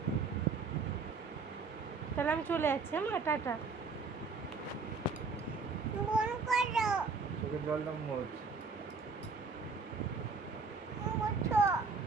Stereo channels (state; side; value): quieter; left; 4.6 dB